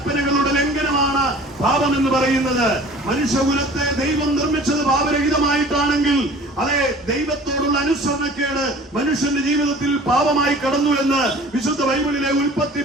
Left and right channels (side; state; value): both; normal; correlation 0.46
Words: ലംഘനമാണ് പാപം എന്ന് പറയുന്നത്. മനുഷ്യകുലത്തെ ദൈവം നിർമ്മിച്ചത് പാപരഹിതമായിട്ടാണെങ്കിൽ അതെ, ദൈവത്തോടുള്ള അനുസരണക്കേട് മനുഷ്യന്റെ ജീവിതത്തിൽ പാപമായി കടന്നു എന്ന് വിശുദ്ധ ബൈബിളിലെ ഉൽപ്പത്തി